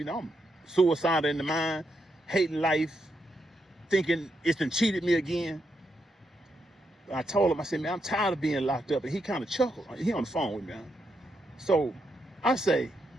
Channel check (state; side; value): normal; both; correlation 0.82